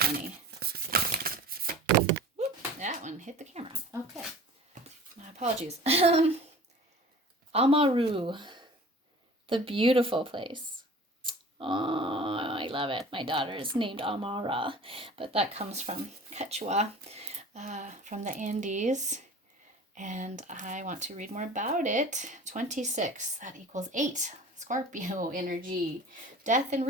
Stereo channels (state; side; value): normal; both; correlation 0.41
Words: Whoop, that one hit the camera. Okay. My apologies. Amaru, the beautiful place. Oh, I love it. My daughter is named Amara, but that comes from Quechua, from the Andes. And I want to read more about it. 26, that equals 8. Scorpio energy, death and